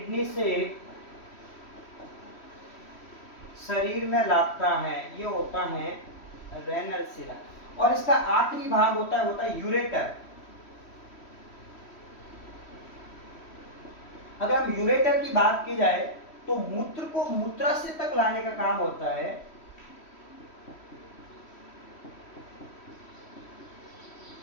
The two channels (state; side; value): late; right; 3.1 ms